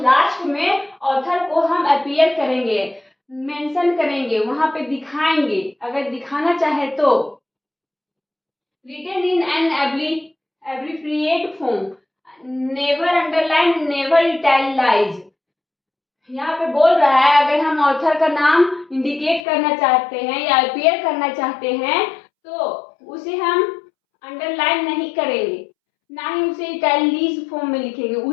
में ऑथर को हम अपीयर करेंगे, मेंशन करेंगे, वहां पे दिखाएंगे अगर दिखाना चाहे तो। Written in an abbreviate form, never underline, never italicise. यहाँ पे बोल रहा है अगर हम ऑथर का नाम इंडिकेट करना चाहते हैं या अपीयर करना चाहते हैं तो उसे हम अंडरलाइन नहीं करेंगे, ना ही उसे इटैलिक फॉर्म में लिखेंगे,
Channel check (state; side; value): drops out; right; at 19.5 s